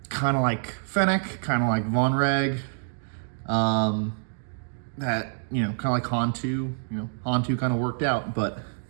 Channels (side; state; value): left; silent; digital silence